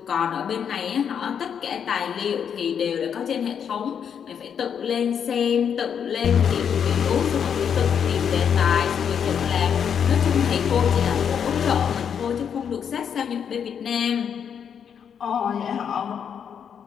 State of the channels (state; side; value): quieter; right; 7.7 dB